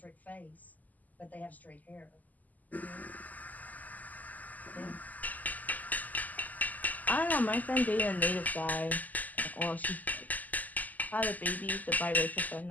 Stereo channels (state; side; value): late; right; 0.080 ms